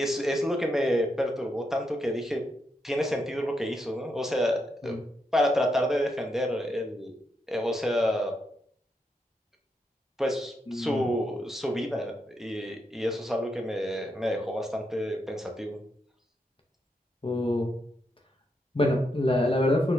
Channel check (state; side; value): normal; both; correlation 0.81